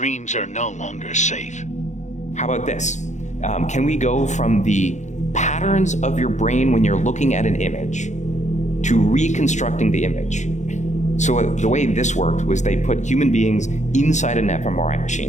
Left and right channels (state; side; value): late; right; 0.34 ms